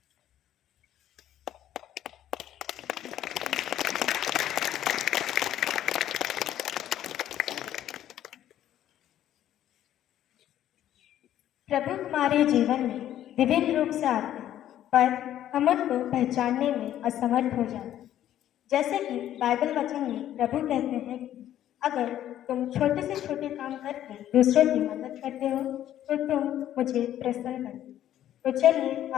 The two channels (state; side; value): quieter; right; 11.8 dB